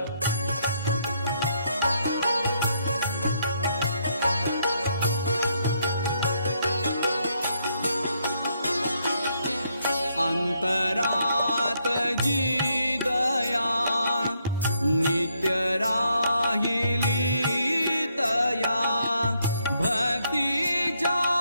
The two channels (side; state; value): both; inverted; correlation -0.75